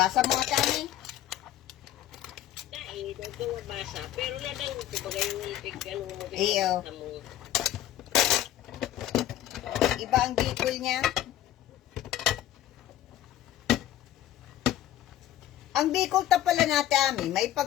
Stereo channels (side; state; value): right; quieter; 12.8 dB